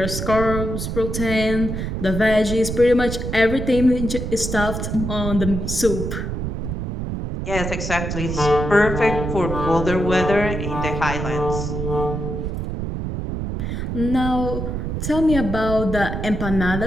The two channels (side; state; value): right; noise; rumble, 3 dB below the sound